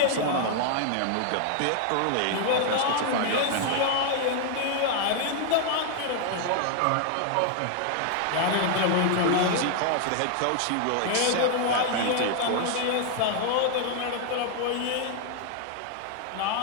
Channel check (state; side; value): different; both; correlation 0.00